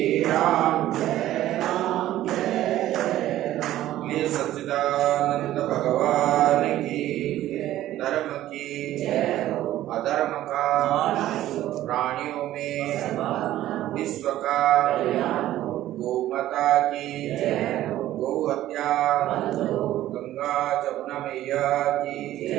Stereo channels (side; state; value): left; quieter; 13.9 dB